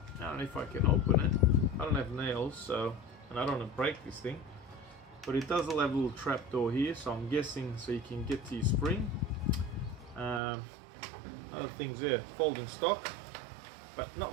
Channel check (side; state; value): left; drops out; at 10.4 s